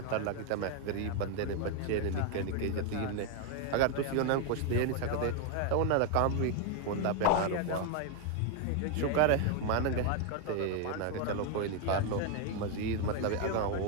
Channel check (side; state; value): both; different; correlation 0.01